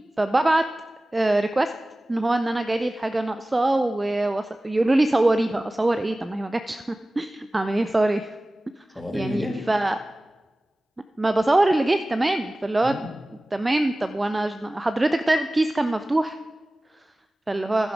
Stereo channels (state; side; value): normal; both; correlation 0.97